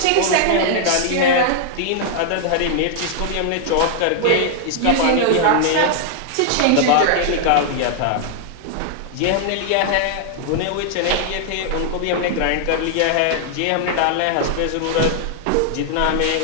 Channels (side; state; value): both; different; correlation 0.00